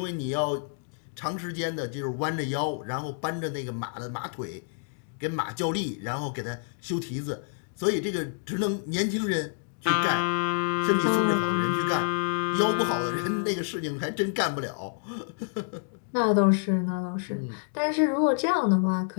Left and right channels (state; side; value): silent; right; digital silence